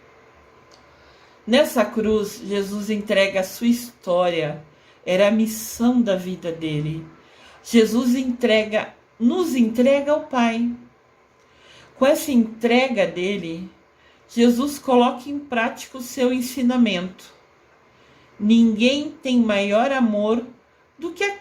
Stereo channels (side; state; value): both; identical; correlation 1.00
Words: Nessa cruz, Jesus entrega a sua história, era a missão da vida dele. Jesus nos entrega ao Pai. Com essa entrega dele, Jesus coloca em prática o seu ensinamento. Ninguém tem maior amor do que